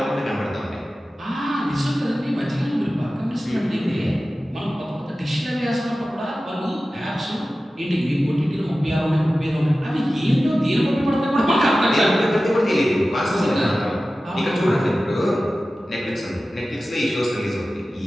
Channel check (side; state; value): both; normal; correlation 0.95